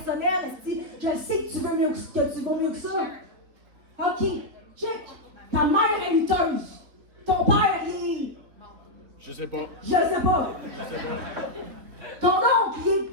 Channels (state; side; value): late; left; 4.0 ms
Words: Esti. Je sais que tu veux mieux que vaux mieux que ça. OK, check. Ta mère est lutteuse. Ton père, il est... Je sais pas. Je sais pas. Ton oncle, il est...